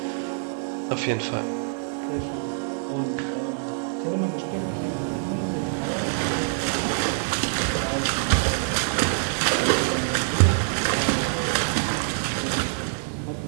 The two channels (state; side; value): silent; left; digital silence